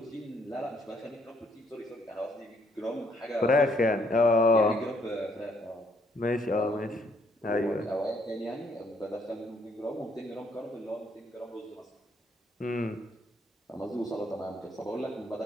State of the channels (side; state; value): both; normal; correlation 0.69